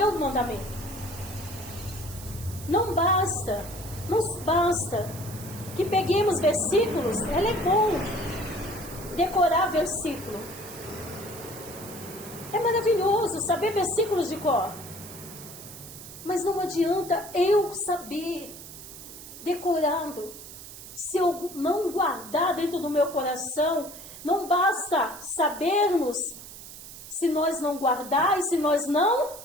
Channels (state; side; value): noise; right; hiss, 14 dB below the sound